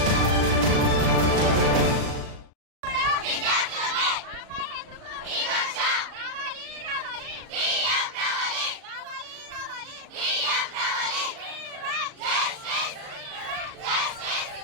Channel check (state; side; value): late; left; 36 ms